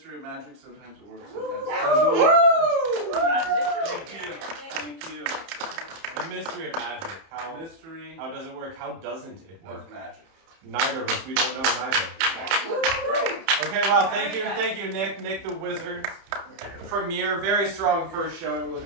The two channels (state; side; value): late; left; 30 ms